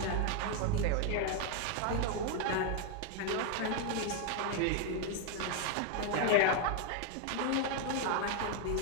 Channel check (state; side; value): different; both; correlation 0.01